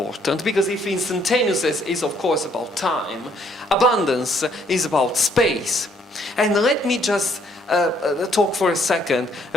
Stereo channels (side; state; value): both; normal; correlation 0.67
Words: because if instantaneousness is of course about time, abundance is about space. And let me just talk for a second